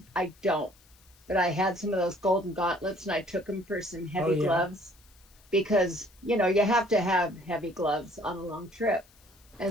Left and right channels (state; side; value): noise; left; hiss, 28 dB below the sound